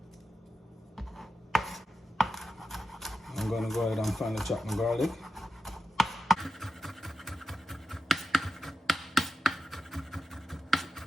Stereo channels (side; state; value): both; normal; correlation 0.89